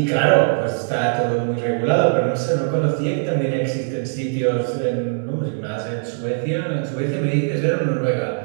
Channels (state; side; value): silent; left; digital silence